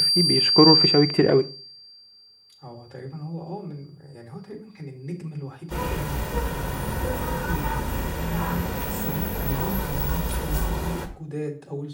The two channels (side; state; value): both; identical; correlation 1.00